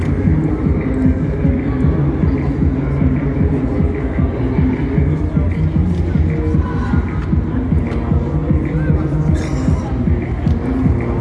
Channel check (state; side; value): identical; both; correlation 1.00